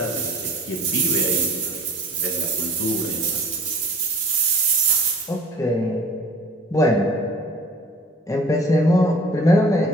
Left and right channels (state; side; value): normal; both; correlation 0.48